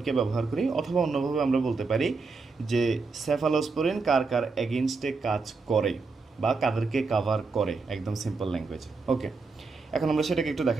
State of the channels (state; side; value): quieter; left; 4.3 dB